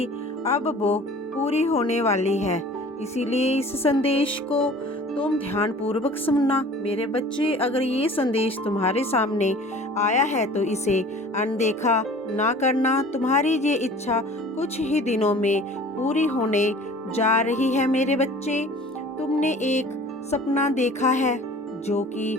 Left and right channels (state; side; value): normal; both; correlation 0.46